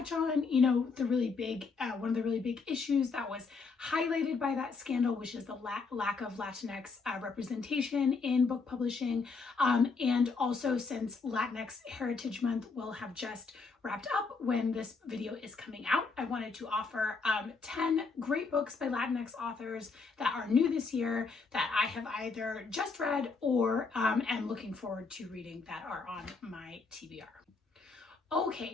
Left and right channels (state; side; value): quieter; right; 4.5 dB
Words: on, the really big, one of the really big issues that was highlighted by that scandal, which is the lack of Latinx representation in book publishing. And also, since Latinx Heritage Month will have just wrapped up when this video is coming out, I wanted to offer 10 great books by Latinx authors that are new this year that I have either just read or am looking forward to reading that are on my TBR.